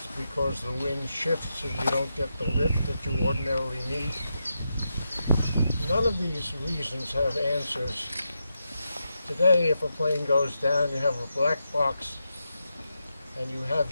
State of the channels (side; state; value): both; inverted; correlation -0.86